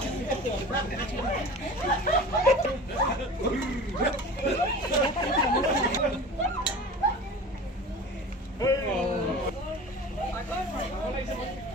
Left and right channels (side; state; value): both; normal; correlation 0.37